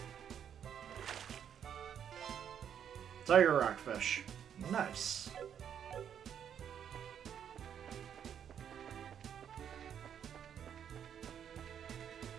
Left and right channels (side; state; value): left; quieter; 8.7 dB